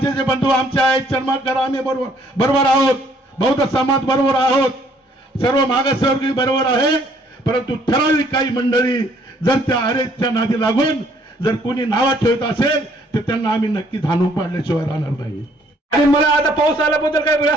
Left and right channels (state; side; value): normal; both; correlation 0.63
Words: बंधू आमचे आहेत, चर्मकार आम्ही बरोबर आहोत, बौद्ध समाज बरोबर आहोत, सर्व मागासवर्गीय बरोबर आहे. परंतु ठराविक काही मंडळी जर त्या अरेच्या नादी लागून जर कोणी नावा ठेवत असेल तर त्यांना आम्ही नक्की धानू पाडल्याशिवाय राहणार नाही. आणि मला आता पाऊस आल्याबद्दल काही